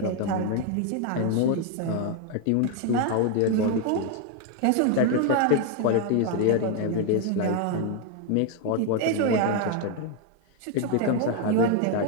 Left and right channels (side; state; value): both; different; correlation 0.01